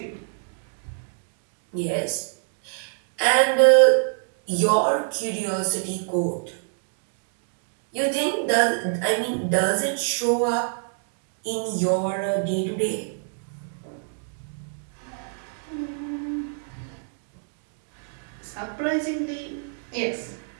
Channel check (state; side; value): silent; left; digital silence